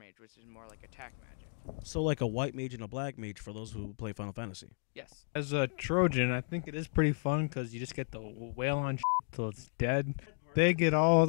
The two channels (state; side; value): silent; right; 55 dB below the other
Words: which is more like attack magic. So like a white mage and a black mage for those who play Final Fantasy. Yes. As a Trojan, I think it is pretty fun because you just get to wail on till it's dead. They get all